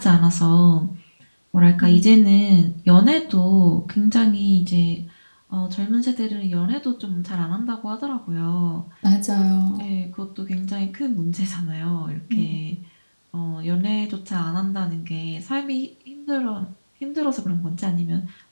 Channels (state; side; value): inverted; both; correlation -1.00